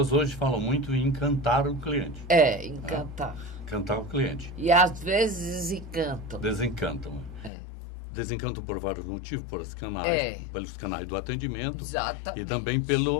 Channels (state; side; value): drops out; right; at 7.5 s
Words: hoje falam muito em encantar o cliente. Encantar. Encantar o cliente. E às vezes desencantam. Desencantam. Desencantam por vários motivos, pelos canais do atendimento. Exatamente. E também